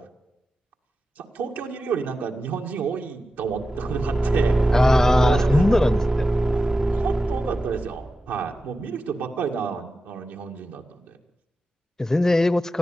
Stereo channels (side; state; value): both; normal; correlation 0.92